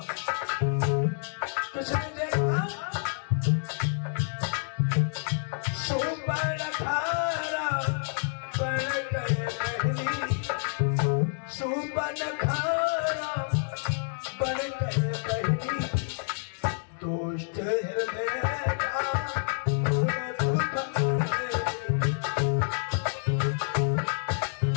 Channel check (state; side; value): silent; right; digital silence